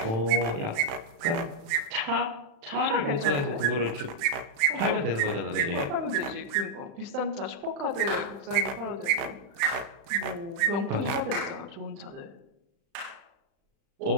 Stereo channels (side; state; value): left; late; 36 ms